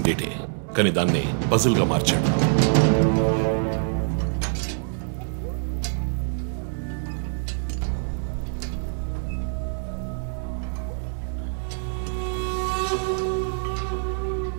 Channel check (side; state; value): left; silent; digital silence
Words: డేటే, కానీ దాన్ని పజిల్గా మార్చాడు.